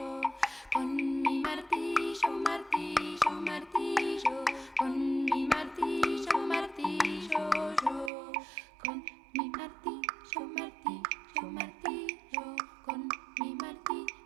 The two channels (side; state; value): left; drops out; at 8.1 s